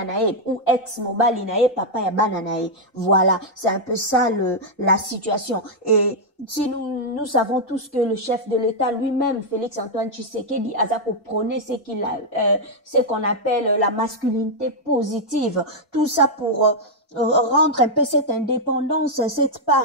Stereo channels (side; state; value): both; normal; correlation -0.03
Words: Naye ou ex Mobali Naye papa Yabana Naye. Voilà, c'est un peu ça la situation. Et si nous savons tous que le chef de l'État lui-même, Félix-Antoine Tshisekedi, Azako prônait ce qu'on appelle la masculinité positive. Tout ça pour rendre un peu cette indépendance, cette